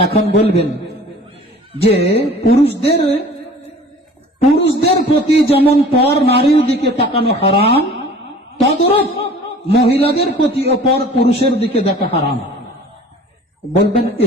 এখন বলবেন যে পুরুষদের প্রতি যেমন পর নারীর দিকে তাকানো হারাম, তদ্রূপ মহিলাদের প্রতি পর পুরুষের দিকে দেখা হারাম। বলবেন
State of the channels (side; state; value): both; normal; correlation 0.46